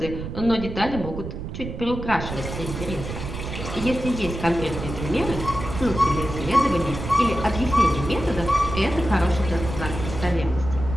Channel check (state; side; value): noise; right; rumble, 7 dB below the sound